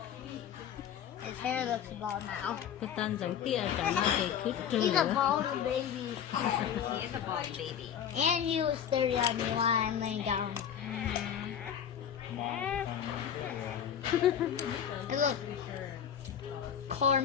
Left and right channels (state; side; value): quieter; right; 8.8 dB